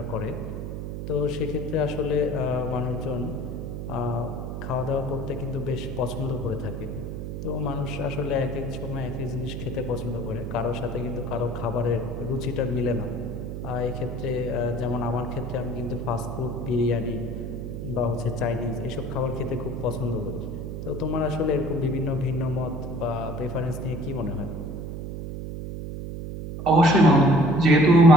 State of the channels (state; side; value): noise; right; hum, 6 dB below the sound